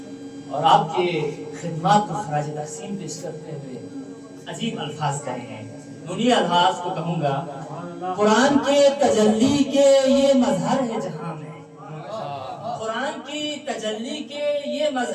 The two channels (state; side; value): identical; both; correlation 1.00